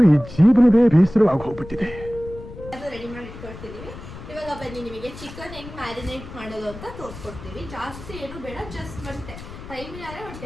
ಈ ಜೀವನವೇ ಬೇಸರವಾಗಿ ಹೋಗ್ಬಿಟ್ಟಿದೆ. ರೆಡಿ ಮಾಡಿ ಇಟ್ಕೊಳ್ತಿದ್ದೀವಿ. ಇವಾಗ ಬನ್ನಿ ನಿಮಗೆ ಚಿಕನ್ ಹೆಂಗೆ ಮ್ಯಾರಿನೇಟ್ ಮಾಡೋದು ಅಂತ ತೋರಿಸ್ಕೊಡ್ತೀವಿ. ಜಾಸ್ತಿ ಏನು ಬೇಡ, ಜಸ್ಟ್ ಒಂದು ಟೈಮ್ ಇಲ್ಲಾರೆ ಒಂದು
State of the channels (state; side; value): noise; left; rumble, 14 dB below the sound